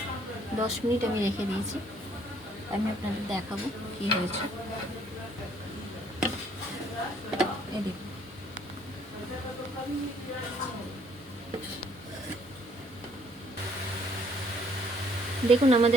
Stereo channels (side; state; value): both; normal; correlation 0.63